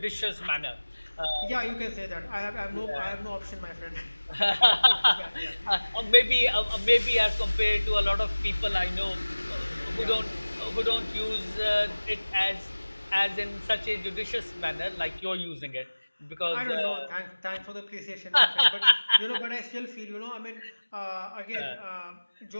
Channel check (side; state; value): both; inverted; correlation -1.00